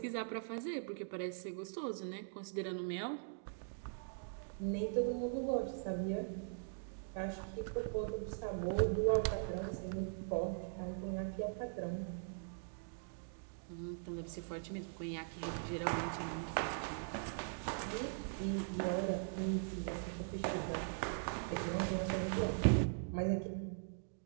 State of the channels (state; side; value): silent; left; digital silence